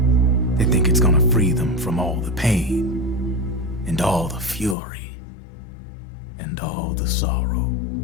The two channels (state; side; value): drops out; right; at 4.8 s